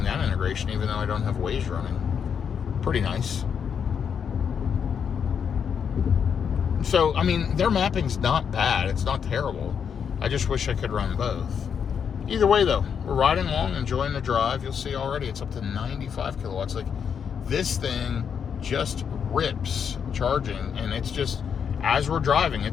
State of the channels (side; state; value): right; quieter; 7.3 dB